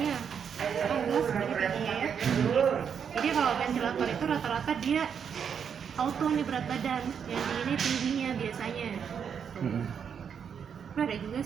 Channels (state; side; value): quieter; left; 7.3 dB